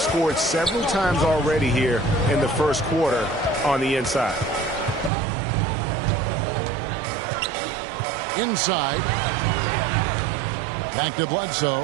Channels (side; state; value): left; drops out; at 5.1 s